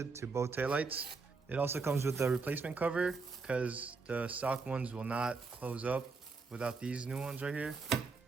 to both taillights. It also comes with the replacement cover because the stock ones will not close up without these new ones right here.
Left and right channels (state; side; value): quieter; left; 4.3 dB